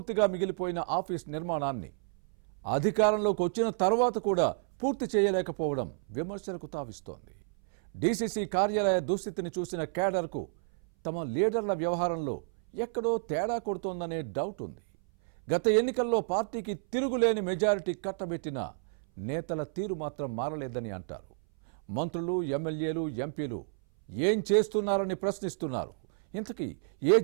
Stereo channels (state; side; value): silent; left; 57 dB below the other